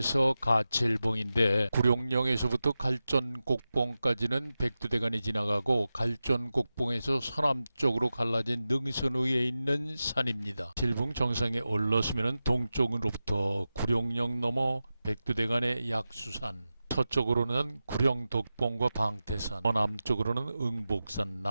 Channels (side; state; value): both; inverted; correlation -0.93